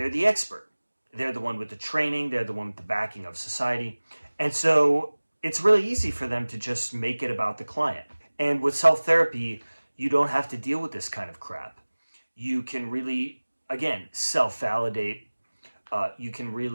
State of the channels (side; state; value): both; inverted; correlation -1.00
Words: the expert. They're the one with the training. They're the one with the backing of society. And so it's really easy for them to just make it about the client. And with self-therapy, you don't have to deal with this kind of crap. You can really, again, self-validate. You can